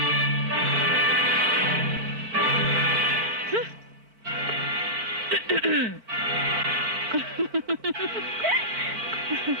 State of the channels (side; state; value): left; late; 4.5 ms